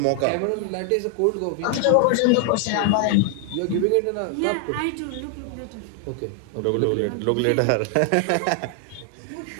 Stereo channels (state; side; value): different; both; correlation 0.00